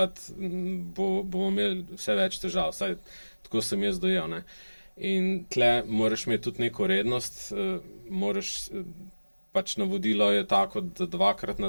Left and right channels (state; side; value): inverted; both; correlation -1.00